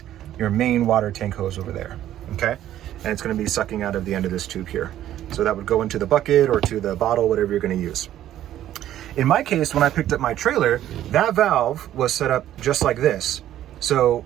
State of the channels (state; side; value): quieter; left; 12.3 dB